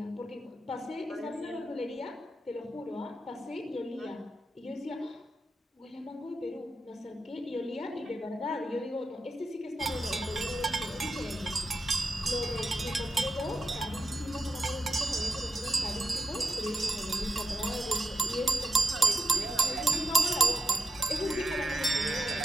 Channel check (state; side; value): normal; both; correlation 0.88